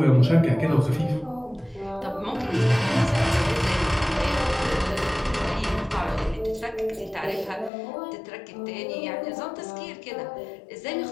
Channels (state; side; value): drops out; right; at 7.7 s